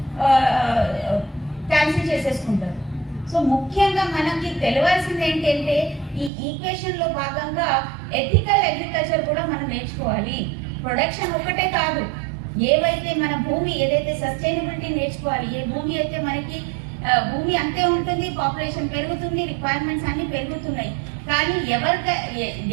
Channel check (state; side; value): drops out; left; at 6.3 s